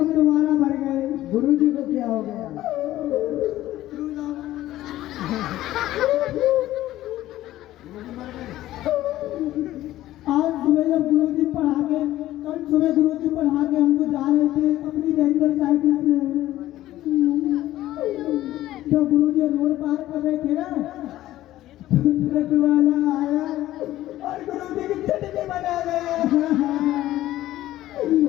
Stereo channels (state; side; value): quieter; right; 14.7 dB